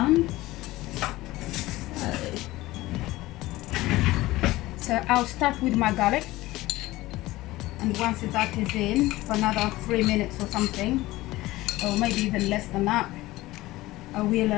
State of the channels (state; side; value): quieter; right; 18.2 dB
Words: So I'll start with my garlic, and once that is in for another 3 minutes or something, or maybe even less than that, I